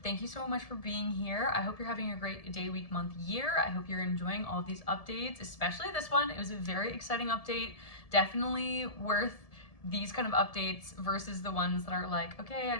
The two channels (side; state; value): right; late; 1.7 ms